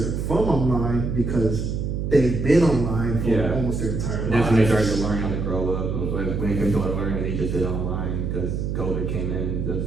from online because they've been online for almost their entire life. That's when they started to learn how to grow up. When it comes to learning, they just did it online because COVID came in and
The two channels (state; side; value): noise; right; hum, 2 dB below the sound